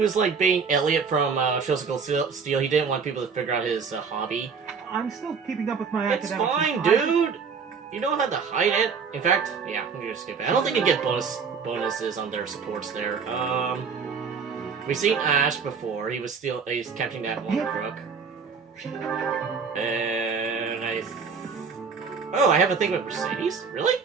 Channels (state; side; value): quieter; left; 5.7 dB